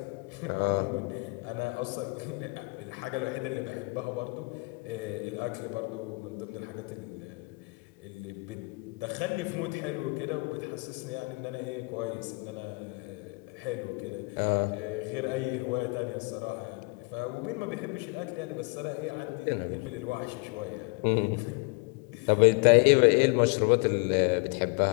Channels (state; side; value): quieter; right; 30.0 dB